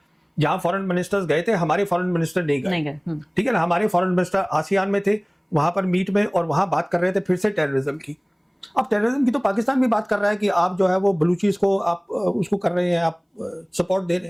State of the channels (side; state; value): both; identical; correlation 1.00